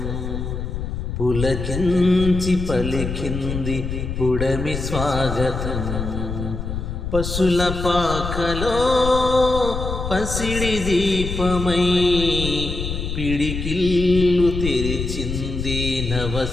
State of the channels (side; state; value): left; noise; rumble, 5 dB below the sound